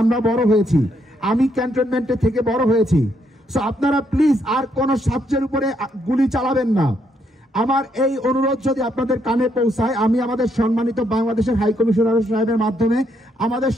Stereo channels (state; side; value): normal; both; correlation 0.74